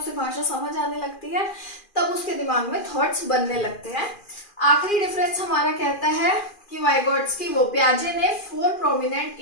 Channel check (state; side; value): late; right; 2.4 ms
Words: भाषा समझ आने लगती है, तब उसके दिमाग में थॉट्स बनने लगते हैं। आखिरी डिफरेंस हमारा कहता है कि वाइगोट्स्की वो पियाजे ने 4 प्रोमिनेंट